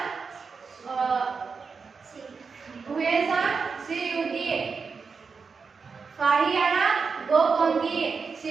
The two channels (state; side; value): quieter; left; 5.2 dB